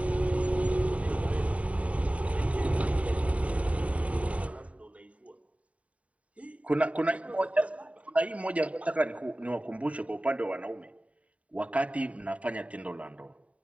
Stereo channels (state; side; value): late; left; 0.066 ms